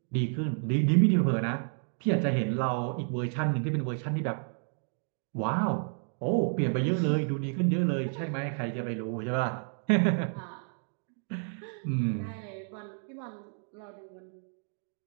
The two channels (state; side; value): silent; left; 55 dB below the other